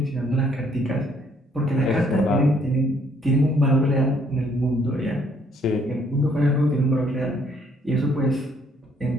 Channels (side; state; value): both; normal; correlation 0.66